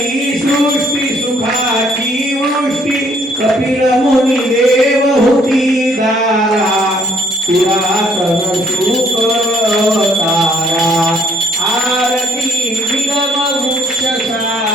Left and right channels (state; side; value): normal; both; correlation 0.64